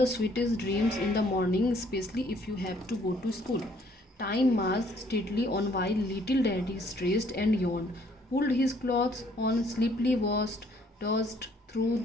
sweetest dreams in the morning, especially if you have to go to school. Time marched steadily on while little daddy stressed and yawned, pulled his clothes on, sleepily washed, dozed through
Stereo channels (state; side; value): normal; both; correlation 0.63